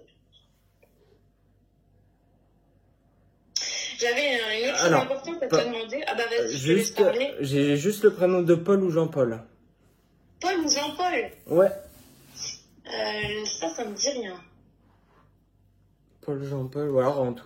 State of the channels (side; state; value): both; identical; correlation 1.00